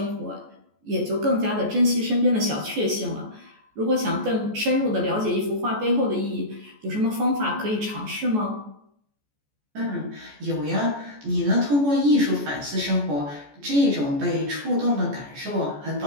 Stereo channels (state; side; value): late; left; 14 ms